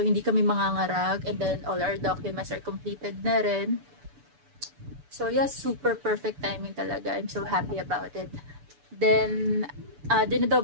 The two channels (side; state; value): left; late; 6.9 ms